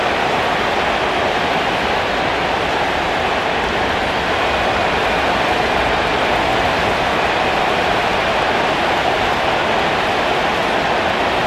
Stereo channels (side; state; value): both; identical; correlation 1.00